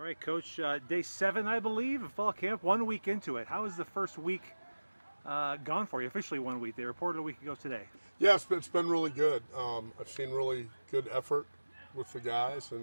right, Coach. Day 7, I believe, of fall camp. 1 week into it. How has the first week gone for you? Officially 1 week. They reported a week ago today. Yeah, it's been really good. I've seen really good effort with the guys,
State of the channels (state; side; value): inverted; both; correlation -1.00